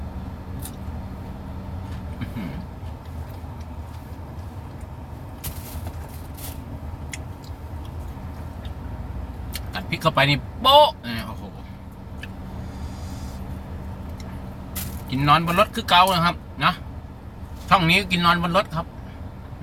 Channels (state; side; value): identical; both; correlation 1.00